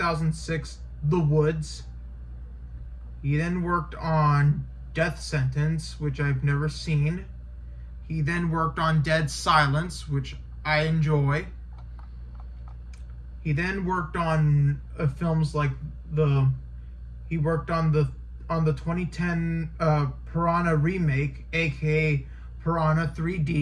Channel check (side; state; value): both; identical; correlation 1.00